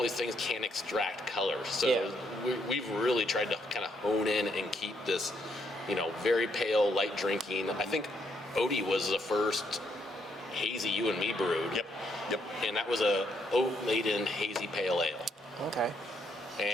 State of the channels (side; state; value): both; normal; correlation 0.74